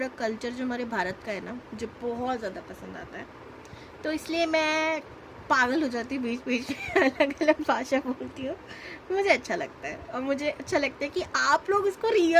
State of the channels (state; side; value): identical; both; correlation 1.00